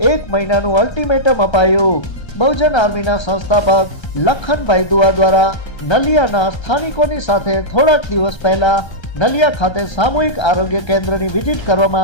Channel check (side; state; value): right; late; 1.3 ms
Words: 1 મહિનાનું અલ્ટિમેટમ અપાયું। બહુજન આર્મીના સંસ્થાપક લખનભાઈ દુઆ દ્વારા નલિયાના સ્થાનિકોની સાથે થોડાક દિવસ પહેલા નલિયા ખાતે સામૂહિક આરોગ્ય કેન્દ્રની વિઝિટ કરવામાં